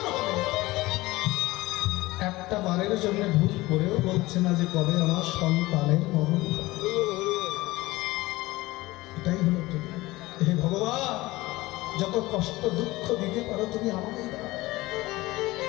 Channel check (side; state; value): right; quieter; 19.7 dB